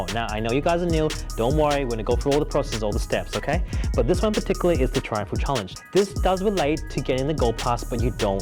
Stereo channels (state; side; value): identical; both; correlation 1.00